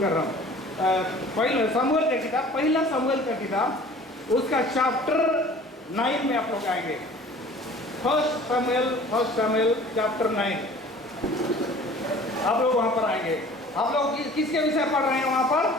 रहा हूँ। पहला सामुएल का किताब, पहला सामुएल का किताब, उसका चैप्टर 9 में आप लोग आएंगे। फर्स्ट सामुएल चैप्टर 9 आप लोग वहां पर आएंगे। आप लोग किसके विषय पढ़ रहे हैं वहां पर?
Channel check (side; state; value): both; normal; correlation 0.47